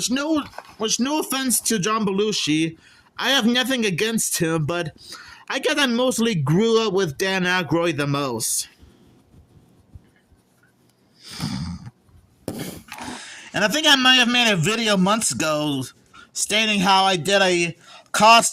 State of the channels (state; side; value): identical; both; correlation 1.00